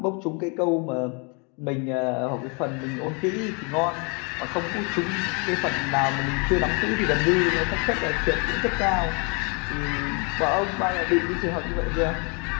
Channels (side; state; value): right; quieter; 33.8 dB